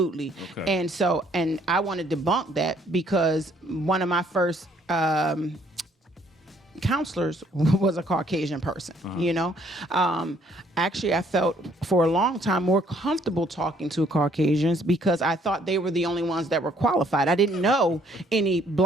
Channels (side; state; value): both; normal; correlation 0.64